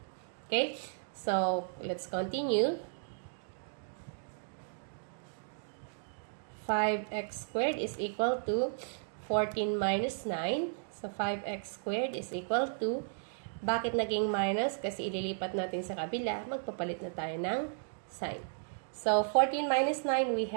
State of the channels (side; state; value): left; silent; digital silence